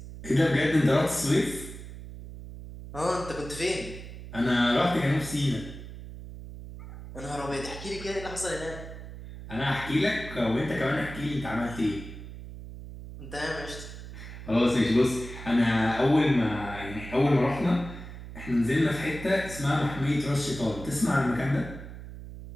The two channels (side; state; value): right; noise; hum, 12 dB below the sound